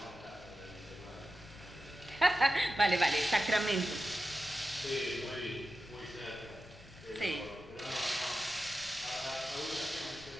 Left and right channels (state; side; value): noise; left; rumble, 20 dB below the sound